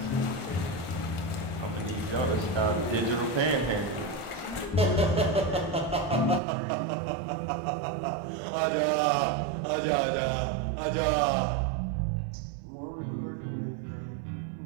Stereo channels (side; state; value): left; drops out; at 6.4 s